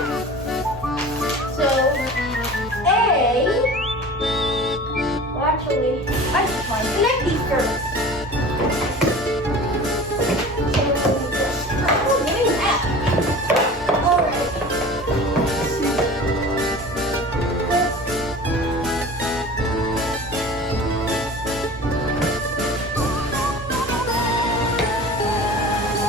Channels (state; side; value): normal; both; correlation 0.39